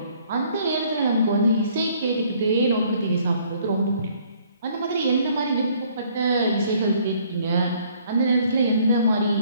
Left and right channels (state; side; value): inverted; both; correlation -0.61